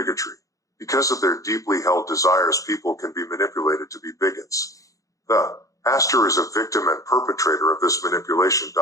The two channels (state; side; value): late; right; 0.16 ms